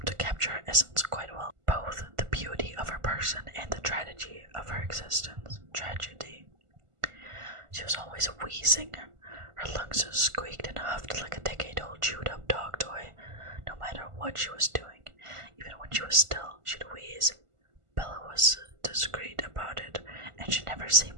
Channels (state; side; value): late; left; 1.5 ms